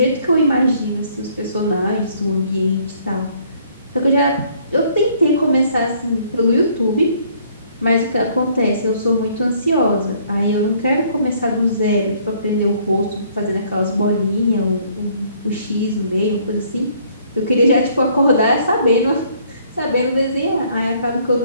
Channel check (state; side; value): inverted; both; correlation -0.62